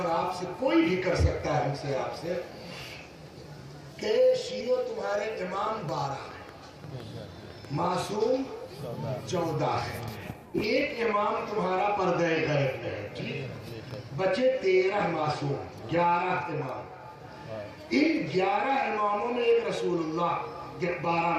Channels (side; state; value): both; identical; correlation 1.00